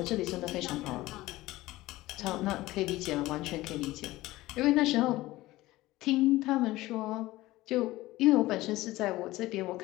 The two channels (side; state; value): right; quieter; 17.9 dB